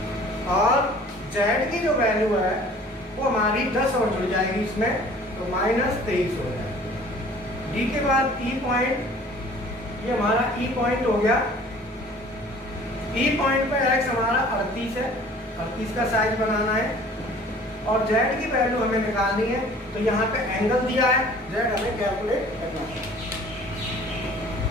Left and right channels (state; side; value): normal; both; correlation 0.49